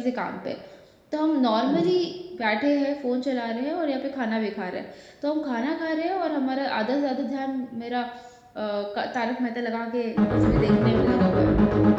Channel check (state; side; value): identical; both; correlation 1.00